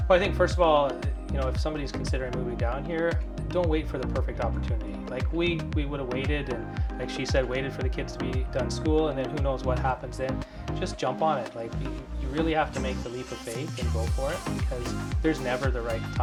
Well, I think first of all, if somebody's considering moving down here, don't wait for the perfect opportunity. Like we would have waited, and like she said, waited for the kids to be done school, and then who knows what happens then. Just jump on it. Like you really have to make the leap of faith and go for it, because there's never the right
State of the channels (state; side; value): identical; both; correlation 1.00